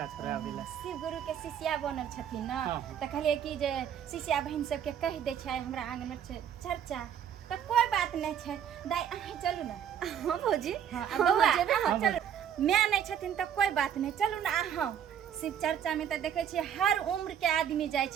छोड़ावे ला शिव गुरु के शिष्या बनल छथिन ना हाँ। तो कहलिए कि जे शिष्या बहन सबके कह दे छै हमरा आंगन में छै चर्चा तो कोई बात नहीं छै दाई अहीं चलू ना हाँ भौजी हाँ बउआ जेबे अहाँ चलू मैं नहीं छथिन तो कोई बात नहीं चलू ना अहाँ शिव चर्चा में तो देखे छियै हर उम्र के आदमी जाय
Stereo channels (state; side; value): quieter; left; 9.0 dB